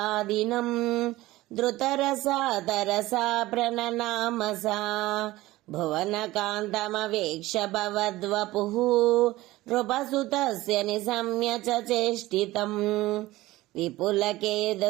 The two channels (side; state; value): left; quieter; 18.0 dB